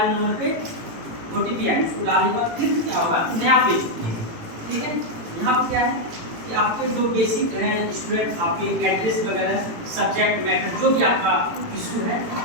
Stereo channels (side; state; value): left; late; 18 ms